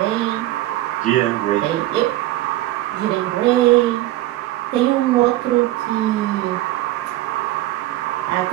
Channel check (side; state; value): left; quieter; 15.8 dB